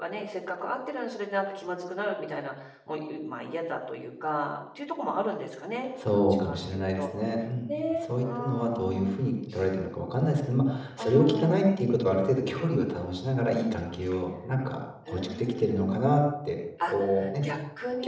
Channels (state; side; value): identical; both; correlation 1.00